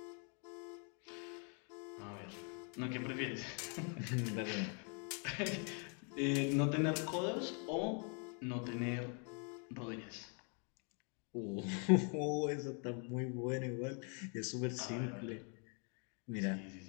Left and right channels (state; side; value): quieter; right; 38.6 dB